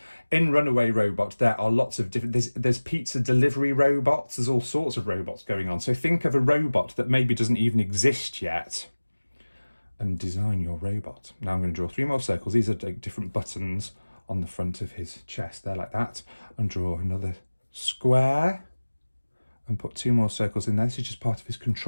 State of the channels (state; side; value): inverted; both; correlation -1.00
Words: In Runaway Robot, there are lots of different, there's pizza delivery robots, there's all sorts of robots going on. So think of a robot that maybe doesn't even exist yet and design your robot. Now I'm going to draw 3 more circles. These are like different buttons on the front of his chest there like that, and draw another square and put 2 more circles in there. This is just part of his